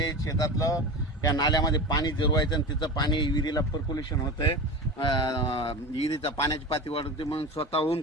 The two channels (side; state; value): both; normal; correlation 0.28